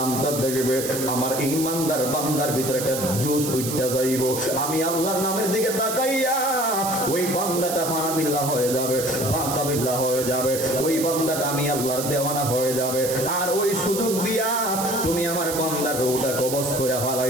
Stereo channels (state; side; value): noise; right; hiss, 5 dB below the sound